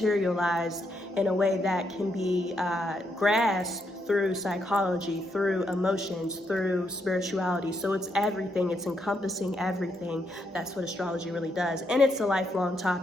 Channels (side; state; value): both; normal; correlation 0.78